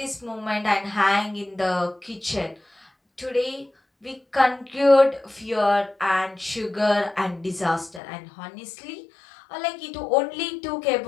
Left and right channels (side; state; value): right; drops out; at 8.0 s